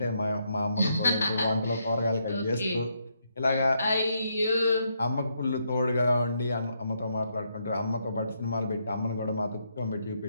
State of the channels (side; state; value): both; inverted; correlation -0.77